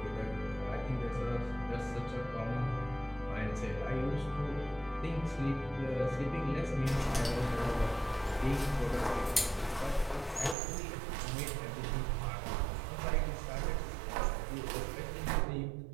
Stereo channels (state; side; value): drops out; left; at 10.6 s